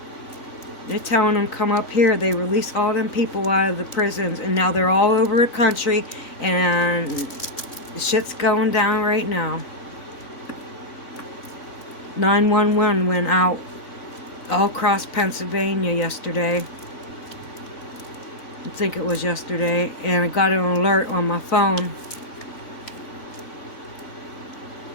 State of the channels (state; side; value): late; right; 3.9 ms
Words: They're telling them come up here. They release all them people out of the prisons, and now they're all over the country, and the shit's going down right now. 911 went out all across Pennsylvania yesterday. I think it was yesterday, and I got an alert on my phone